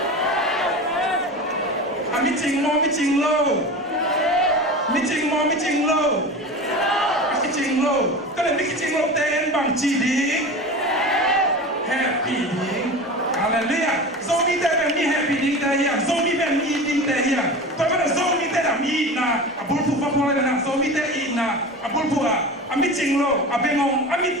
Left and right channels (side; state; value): both; normal; correlation 0.31